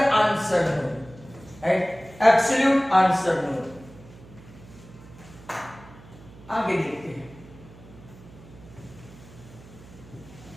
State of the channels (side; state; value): right; noise; hum, 20 dB below the sound